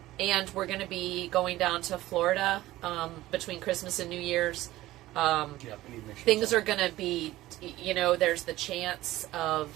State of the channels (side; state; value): left; quieter; 16.4 dB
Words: we're going to be going down to Florida between Christmas and New Year's. Yeah, we need to make sure Things are going to be, there's the chance of